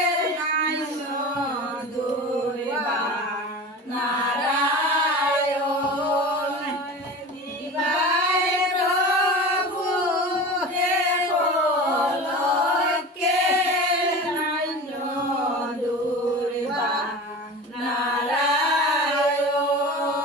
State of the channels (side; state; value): both; normal; correlation 0.33